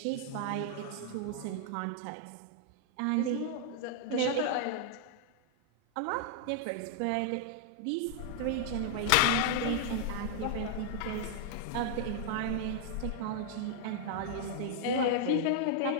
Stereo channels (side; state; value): both; different; correlation -0.01